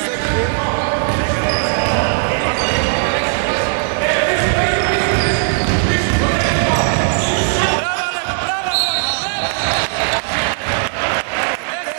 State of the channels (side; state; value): left; silent; digital silence